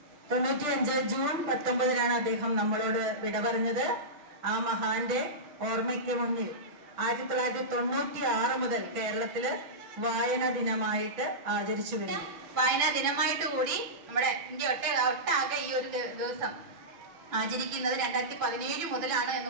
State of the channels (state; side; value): late; left; 5.8 ms